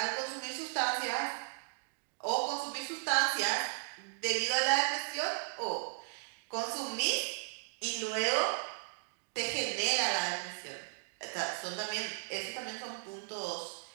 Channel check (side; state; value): left; silent; digital silence